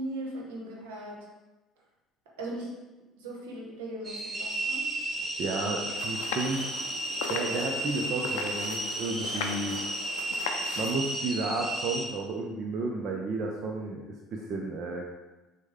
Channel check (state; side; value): normal; both; correlation 0.54